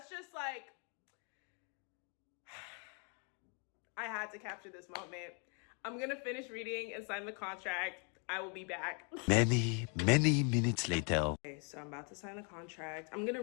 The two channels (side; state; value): right; quieter; 38.4 dB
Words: just like I had to capture this moment. I'm gonna finish reading and sign the contract. I will be back. Many minutes later. Okay, so I'm about to sign the contract. I'm gonna